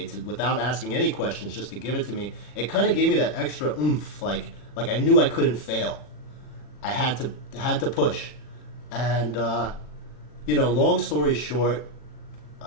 without asking any questions, just to give it to me, it kind of gave me that extra oomph, like I knew I couldn't fail. I had to push. And, you know, long story short,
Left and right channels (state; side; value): late; right; 40 ms